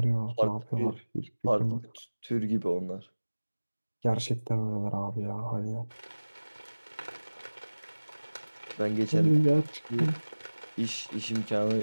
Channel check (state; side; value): inverted; both; correlation -1.00